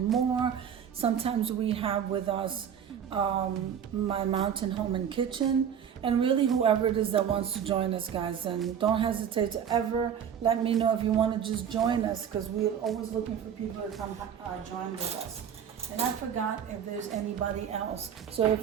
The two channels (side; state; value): left; quieter; 8.5 dB